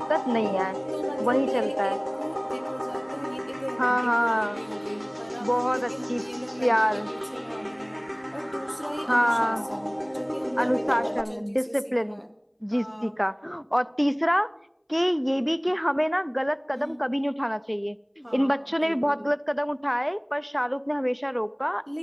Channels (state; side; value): identical; both; correlation 1.00